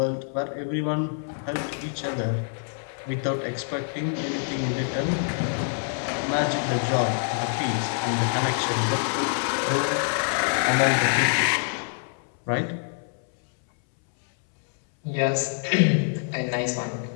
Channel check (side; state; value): right; silent; 61 dB below the other